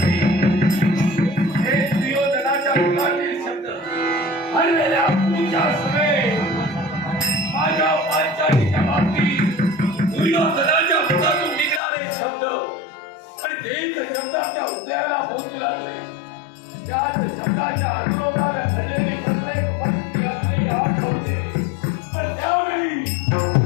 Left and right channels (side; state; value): right; drops out; at 11.8 s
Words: हे दुर्योधनाच्या मुखातील शब्द हरलेल्या पूजा समेत माझ्या पांचालीच्या बाबतीत दुर्योधनाच्या मुखातून निघणारे शब्द आणि तेच शब्द आपल्या हृदयाला पोहोचू लागले त्याच शब्दाच्या अनुरोधाला घडलेली प्रत्येक व्यक्ती असलेली आठवते पण त्यावेळी